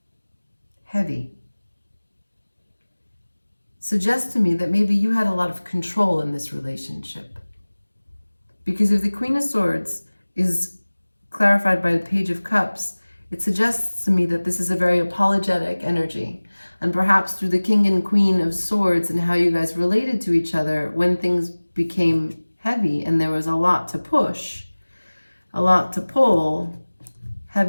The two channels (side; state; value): both; inverted; correlation -1.00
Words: heavy, suggests to me that maybe you had a lot of control in this relationship. Because if the Queen of Swords is clarified by the Page of Cups, it suggests to me that this is a very apologetic energy. And perhaps through the King and Queen of Swords and how you guys related to each other, when things became heavy and there was a lot to push, a lot to pull,